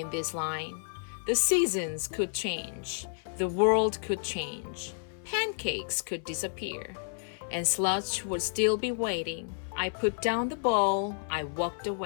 this line. The seasons could change. The world could change. Pancakes could disappear. And Sludge would still be waiting. I put down the bowl. I walked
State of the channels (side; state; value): right; silent; 56 dB below the other